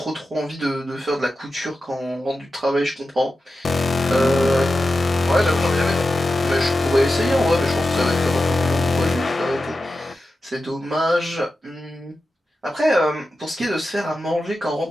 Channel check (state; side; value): normal; both; correlation 0.92